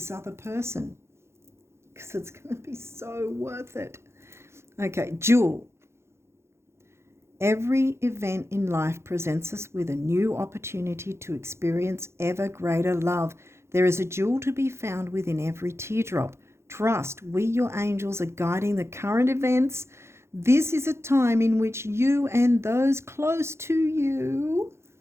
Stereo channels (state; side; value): late; left; 0.13 ms